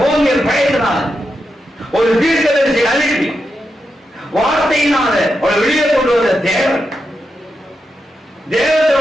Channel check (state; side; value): normal; both; correlation 0.87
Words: ஓங்கிய பயத்தினால ஒரு தீர்க்கதரிசியை அனுப்பி வார்த்தையினால அவளை வெளியே கொண்டு வந்த தேவன்